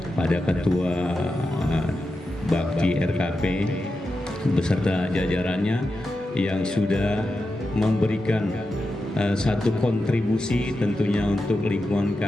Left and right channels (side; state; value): both; normal; correlation 0.90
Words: pada Ketua Bakti RKP beserta jajarannya yang sudah memberikan satu kontribusi tentunya untuk lingkungan